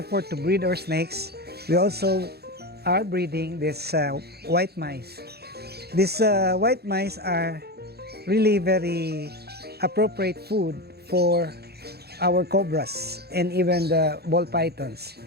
to breed our snakes, we also are breeding this white mice. These white mice are really very appropriate food for our cobras and even the ball pythons,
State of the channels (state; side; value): late; left; 0.47 ms